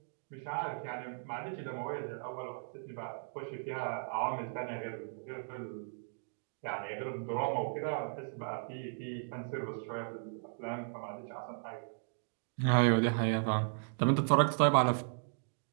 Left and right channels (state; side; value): silent; left; digital silence